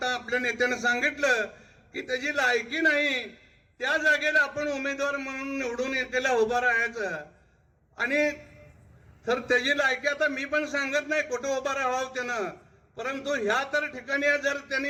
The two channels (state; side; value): identical; both; correlation 1.00